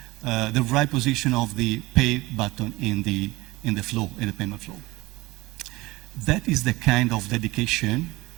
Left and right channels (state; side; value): quieter; left; 20.8 dB